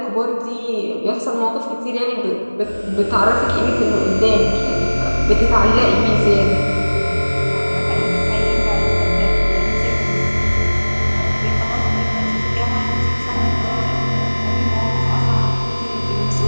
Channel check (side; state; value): both; inverted; correlation -1.00